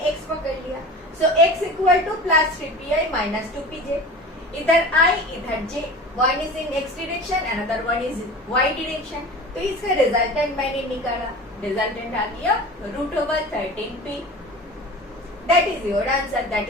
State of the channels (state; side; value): normal; both; correlation 0.36